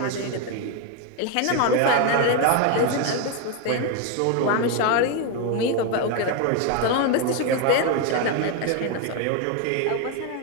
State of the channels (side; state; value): both; different; correlation 0.01